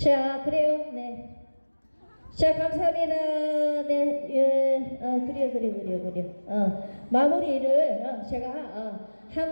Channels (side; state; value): both; inverted; correlation -1.00